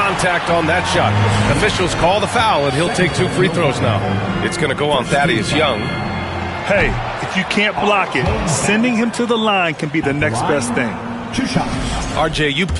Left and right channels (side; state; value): both; identical; correlation 1.00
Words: on that shot. Officials call the foul, and he'll take 2 free throws now. It's going to go on Thaddeus Young. Hey, if you can't block it, sending him to the line can be the next best thing. 2 shots. RJ, you